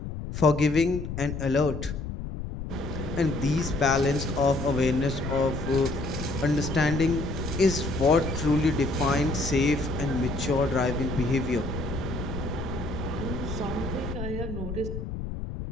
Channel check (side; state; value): left; noise; rumble, 6 dB below the sound